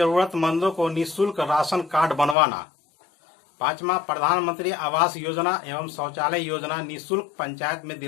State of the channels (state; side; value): drops out; right; at 2.4 s